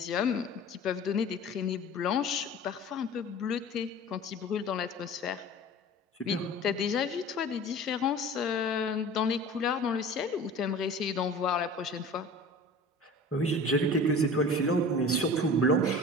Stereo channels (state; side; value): normal; both; correlation 0.40